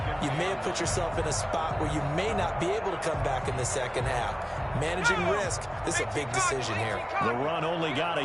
you may have put yourself in a spot where you may not be able to come back in the second half. Managing risk, this is a big decision here. The run only got a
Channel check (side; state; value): both; identical; correlation 1.00